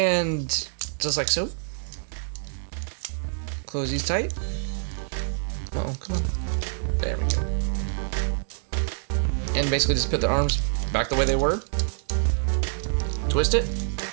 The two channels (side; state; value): left; silent; 61 dB below the other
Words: just like so. Close these tight. Oh, come on. There we go. And basically just put the arms back the way they were. Twist it.